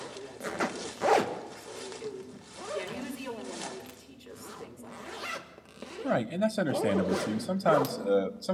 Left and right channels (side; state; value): both; identical; correlation 1.00